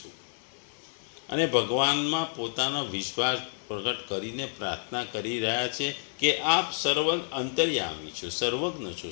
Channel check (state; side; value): silent; right; digital silence